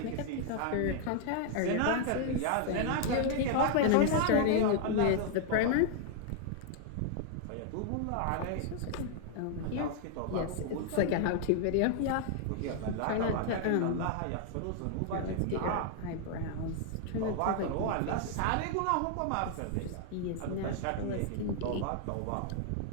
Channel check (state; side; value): different; both; correlation 0.00